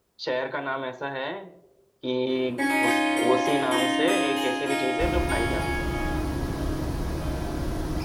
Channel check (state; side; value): identical; both; correlation 1.00